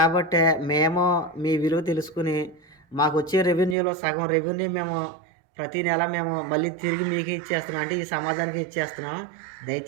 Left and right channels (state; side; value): drops out; left; at 3.8 s